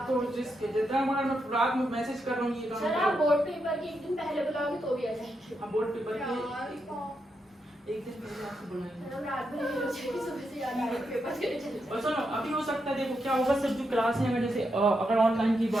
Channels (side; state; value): both; normal; correlation 0.83